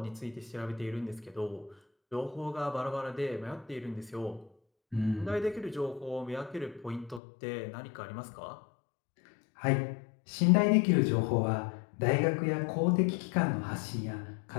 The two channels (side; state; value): right; drops out; at 7.2 s